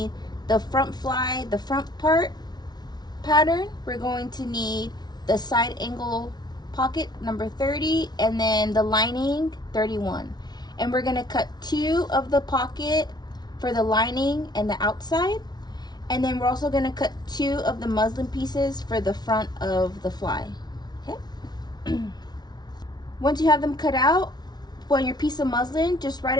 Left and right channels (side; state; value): right; late; 0.19 ms